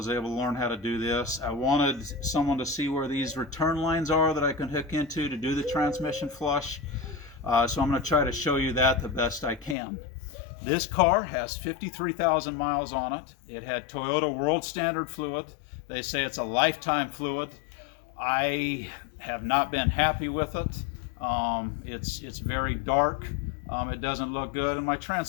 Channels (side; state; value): right; drops out; at 9.8 s